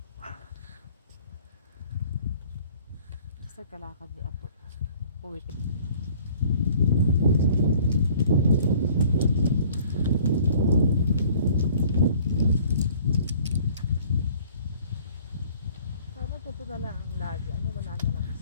Basta kalakad ni Apo. Puwit. Sana totoo na lang ang lagi. Ano, wala na lang.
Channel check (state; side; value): inverted; both; correlation -0.53